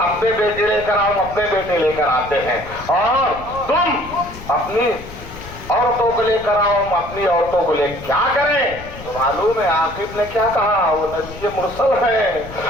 بیٹے لے کر آؤ ہم اپنے بیٹے لے کر آتے ہیں، اور تم اپنی عورتوں کو لے کر آؤ ہم اپنی عورتوں کو لے کیا کریں؟ تو معلوم ہے عاقب نے کیا کہا، وہ نبی مرسل ہے۔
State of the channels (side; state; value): left; noise; rumble, 15 dB below the sound